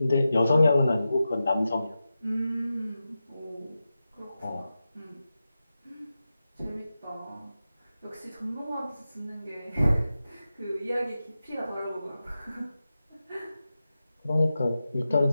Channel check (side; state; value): both; inverted; correlation -0.92